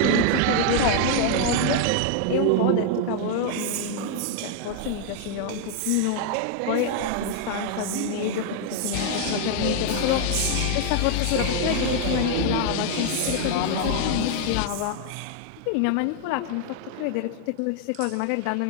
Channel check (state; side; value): different; both; correlation 0.00